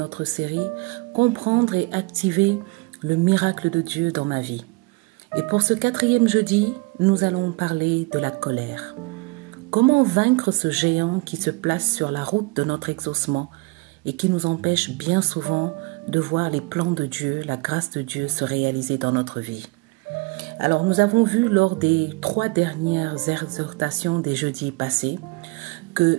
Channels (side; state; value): left; quieter; 26.4 dB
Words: série « Comprendre et activer le miracle de Dieu dans ma vie ». Et pour ce 4e jeudi, nous allons parler de la colère. Comment vaincre ce géant qui se place sur la route de notre exaucement et qui nous empêche bien souvent de voir les plans de Dieu, la grâce de Dieu se réaliser dans notre vie. Alors nous avons vu lors des 3 dernières exhortations des jeudis passés